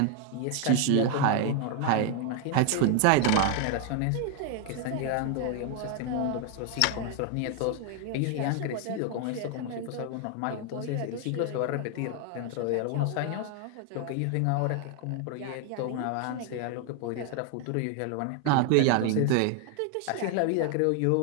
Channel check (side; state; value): both; different; correlation 0.00